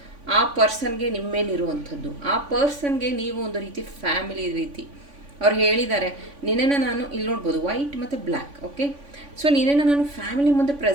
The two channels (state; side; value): late; left; 3.5 ms